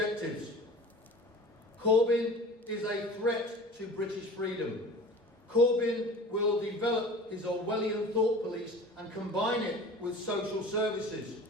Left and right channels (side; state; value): both; normal; correlation 0.40